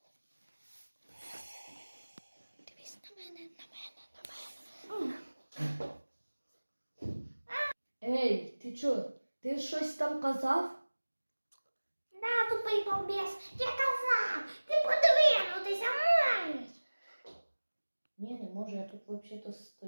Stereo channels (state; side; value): inverted; both; correlation -1.00